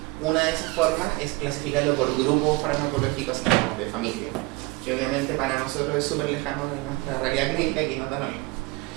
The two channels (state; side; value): quieter; left; 23.6 dB